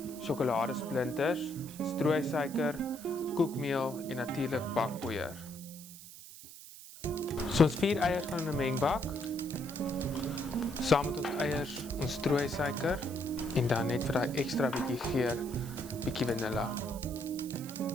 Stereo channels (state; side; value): noise; right; hiss, 16 dB below the sound